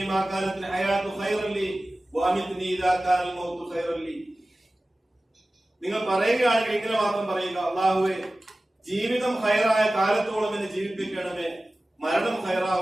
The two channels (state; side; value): normal; both; correlation 0.96